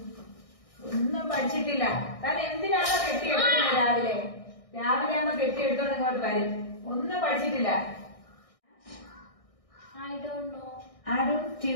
ഒന്നും പഠിച്ചിട്ടില്ല. താൻ എന്തിനാണോ കെട്ടിയെടുക്കുന്നത് രാവിലെ ആകുമ്പോ കെട്ടിയെടുത്തോണ്ട് ഇങ്ങോട്ട് വരും. ഒന്നും പഠിച്ചിട്ടില്ല. I don't know. Arun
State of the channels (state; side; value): late; right; 1.6 ms